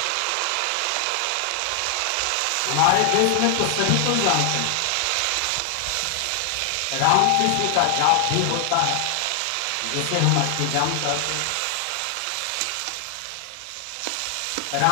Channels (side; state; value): both; different; correlation 0.00